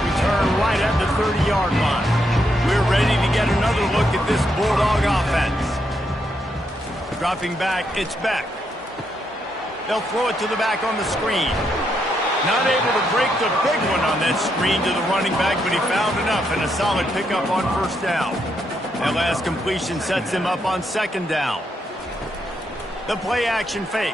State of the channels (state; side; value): normal; both; correlation 0.79